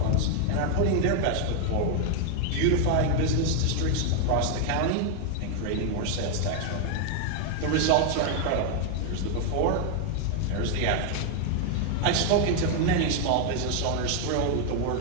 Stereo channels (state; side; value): different; both; correlation 0.00